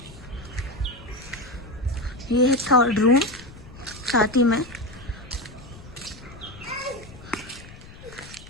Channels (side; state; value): left; noise; rumble, 18 dB below the sound